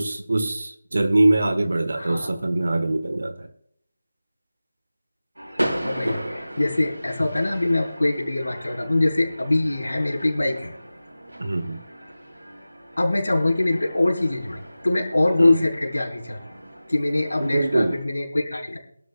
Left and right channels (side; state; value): both; inverted; correlation -0.96